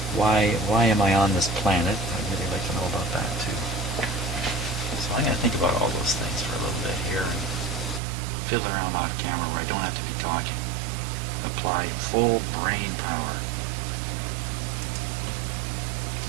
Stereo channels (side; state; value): left; drops out; at 8.0 s